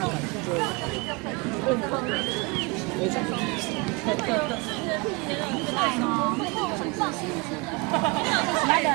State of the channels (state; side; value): quieter; left; 28.0 dB